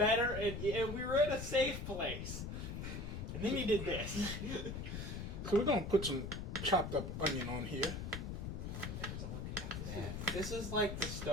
and we were in a safe place. And then you did this. So we're gonna put some chopped up onion on here. This is like the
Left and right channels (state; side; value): noise; left; rumble, 5 dB below the sound